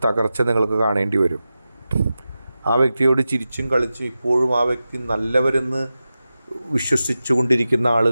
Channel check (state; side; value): inverted; both; correlation -0.93